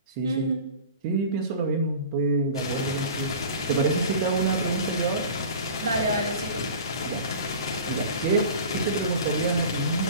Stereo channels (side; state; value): both; inverted; correlation -0.39